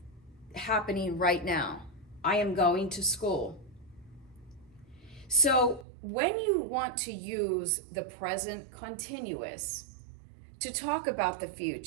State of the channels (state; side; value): drops out; left; at 5.9 s